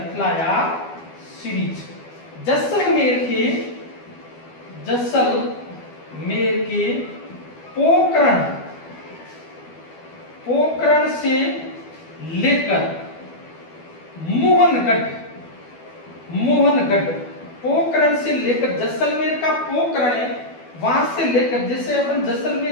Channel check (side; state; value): right; late; 12 ms